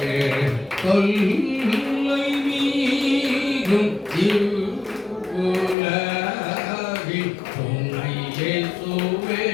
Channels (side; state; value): right; drops out; at 5.8 s